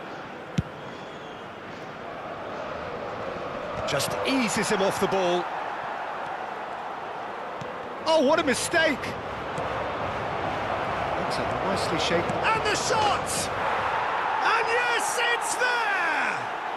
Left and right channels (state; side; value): identical; both; correlation 1.00